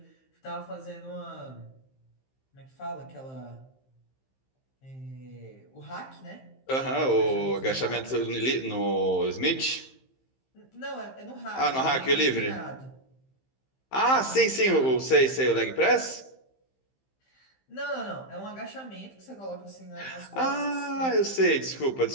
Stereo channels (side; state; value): right; late; 15 ms